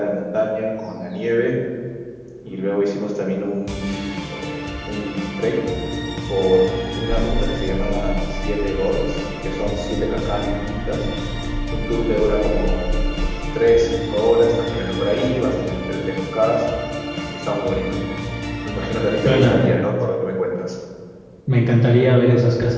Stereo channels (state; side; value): identical; both; correlation 1.00